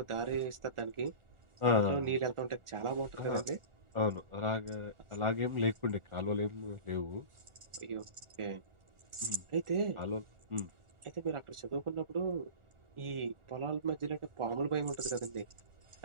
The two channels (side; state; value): left; late; 1.4 ms